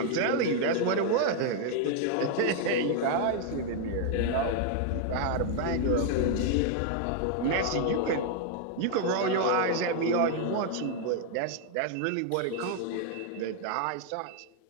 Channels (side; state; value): both; different; correlation 0.00